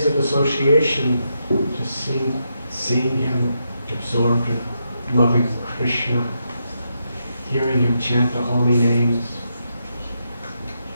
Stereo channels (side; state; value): both; inverted; correlation -0.83